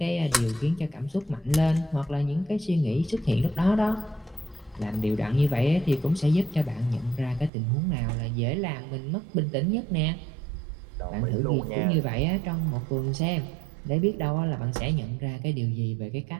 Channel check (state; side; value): drops out; left; at 7.5 s